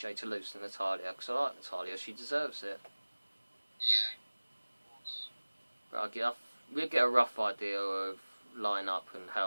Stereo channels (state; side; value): inverted; both; correlation -1.00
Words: to lose to Natalya, because I like Natalya, she deserves it. But we'll get a rough idea of line-up and